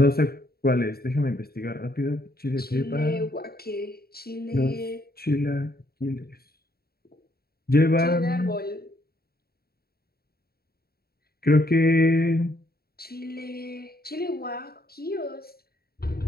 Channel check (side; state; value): right; late; 0.45 ms